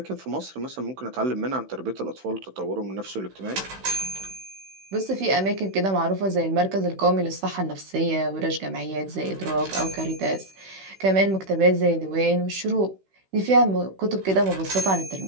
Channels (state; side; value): late; left; 16 ms